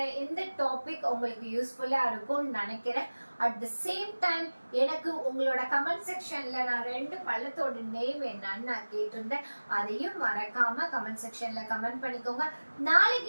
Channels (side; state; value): both; inverted; correlation -1.00